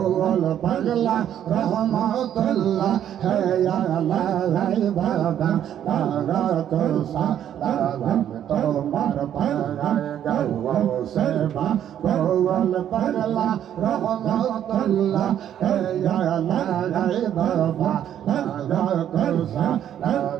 পাগলা রহমাতুল্লাহ হে আল্লাহ হে বাবা তারা তোসা তারা তোমার পাগায় গাও সরবা বল পাগলা রহমাতুল্লাহ হে আল্লাহ হে বাবা তারা তোসা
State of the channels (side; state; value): left; quieter; 10.3 dB